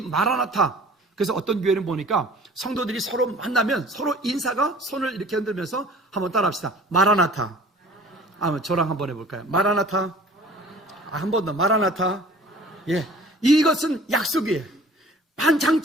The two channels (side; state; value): both; normal; correlation 0.47